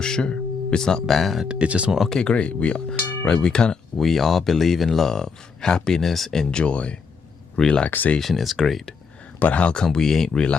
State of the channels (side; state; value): right; quieter; 5.3 dB